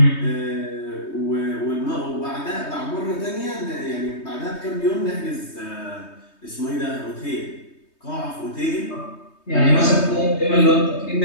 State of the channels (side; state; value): right; late; 3.2 ms